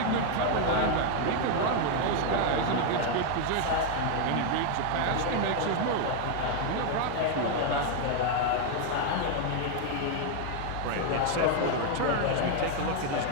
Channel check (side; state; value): both; different; correlation 0.01